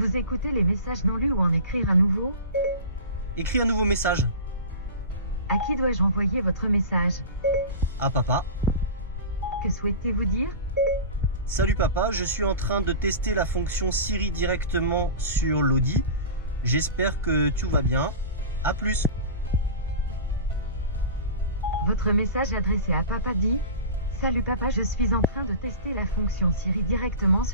écouter les messages non lus ou en écrire un nouveau? Écris un nouveau message. À qui dois-je envoyer votre message? À papa. Que souhaitez-vous dire? Salut papa, je suis en train de tester la fonction Siri directement sur l'Audi. J'espère que tout va bien. A plus. Votre message adressé à papa dit: Salut papa, je suis en train de tester la fonction Siri directement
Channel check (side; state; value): both; inverted; correlation -0.31